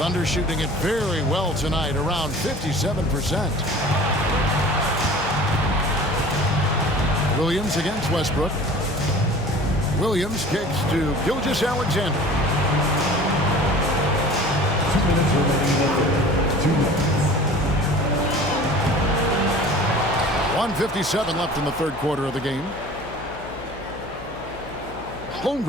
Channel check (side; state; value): left; noise; hum, 17 dB below the sound